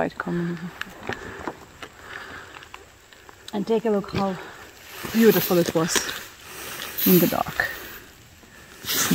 communism. And take a look how beautiful it was in the dark. So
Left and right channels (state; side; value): identical; both; correlation 1.00